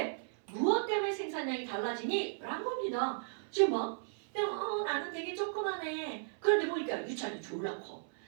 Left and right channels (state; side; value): silent; left; 54 dB below the other